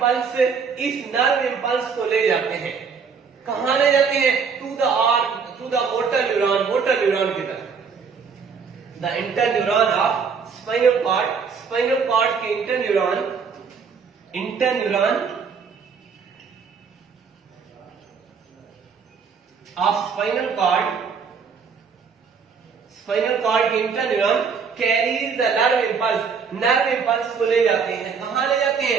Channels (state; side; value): quieter; left; 5.9 dB